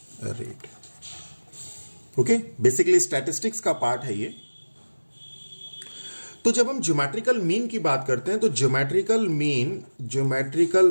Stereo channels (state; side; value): inverted; both; correlation -1.00